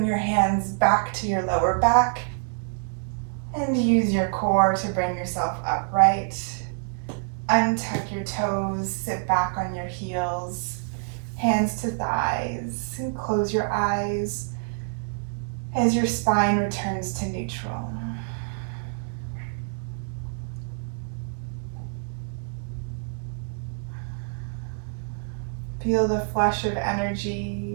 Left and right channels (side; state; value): left; silent; digital silence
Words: your hands back to your lower back and use your core to bring yourself upright. Untuck your toes, sit back on your heels, hands to thighs, and close your eyes as your spine returns to neutral. Feel the flush of energy